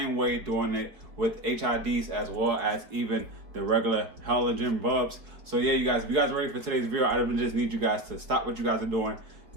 way, doing it with HIDs as well as even the regular halogen bulbs. So yeah, you guys, if you guys are ready for today's video, I just need you guys to stop what you guys are doing,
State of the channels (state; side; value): late; left; 4.6 ms